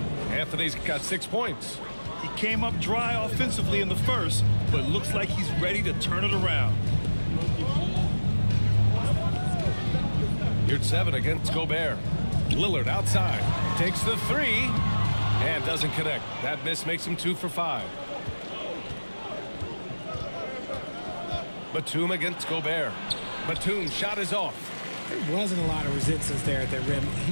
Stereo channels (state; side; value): inverted; both; correlation -1.00